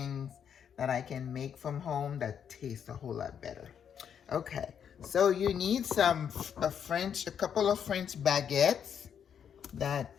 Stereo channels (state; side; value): quieter; right; 8.1 dB